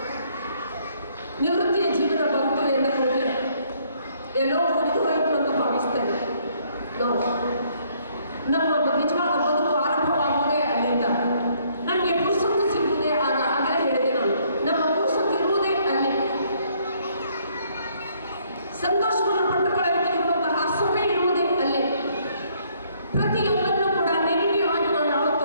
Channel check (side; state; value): both; inverted; correlation -0.66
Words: ನಿವೃತ್ತಿಯ ಜೀವನ ಬಂತು ಎಂದುಕೊಂಡ್ರೆ ಎಲ್ಲೋ ಮುಗಿದು ಹೋಯಿತು ಅಂತ ಭಾವಿಸ್ತೇವೆ ನಾವು. ನಮ್ಮ ನಿಜವಾದ ಬದುಕು ಆರಂಭವಾಗುವುದೇ ಅಲ್ಲಿಂದ. ನನಗೆ ಪುರುಸೊತ್ತು ಸಿಗುವುದೇ ಆಗ. ಆಗಲೇ ಹೇಳಿದೆ ನಾನು, ನಮ್ಮ ಪುರುಸೊತ್ತು ಇರುವುದೇ ಅಲ್ಲಿ. ಸಂತೋಷವನ್ನು ಪಟ್ಟುಕೊಳ್ಳಲಿಕ್ಕೆ ಇರುವಂತಹ ಸಮಯ ಇರುವುದೇ ಅಲ್ಲಿ. ಪ್ರತಿಯೊಂದನ್ನು ಕೂಡ ನೆಗೆಟಿವ್ ಆಗಿ ನಾವು ಯಾವತ್ತೂ